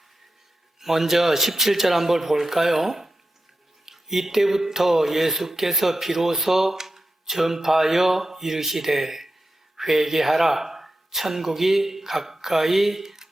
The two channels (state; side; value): normal; both; correlation 0.91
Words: 먼저 17절 한번 볼까요? 이때부터 예수께서 비로소 전파하여 이르시되 회개하라 천국이 가까이